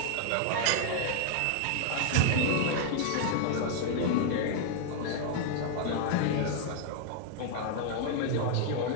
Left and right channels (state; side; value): different; both; correlation 0.00